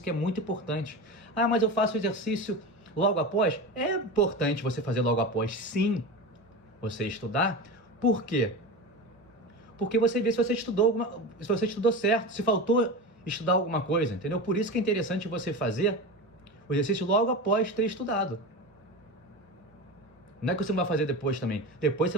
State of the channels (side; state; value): both; normal; correlation 0.25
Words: que é muito importante. Mas eu faço o exercício logo após? É importante você fazer logo após, sim, você estudar. Por quê? Porque você vê se você estudou certo, se faltou estudar alguma coisa, entendeu? Por isso que é interessante você fazer o exercício logo após ter estudado. Não é que você não vai fazer depois também. Depois você